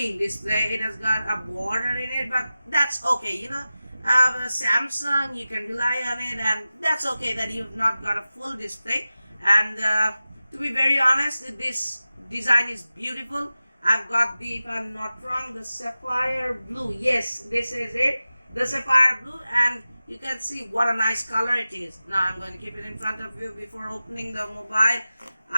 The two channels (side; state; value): both; inverted; correlation -0.95